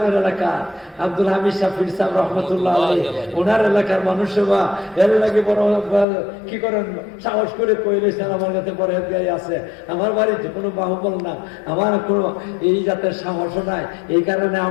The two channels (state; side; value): drops out; right; at 6.1 s